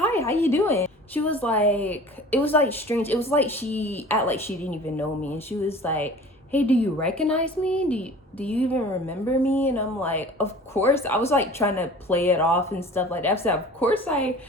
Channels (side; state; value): both; normal; correlation 0.43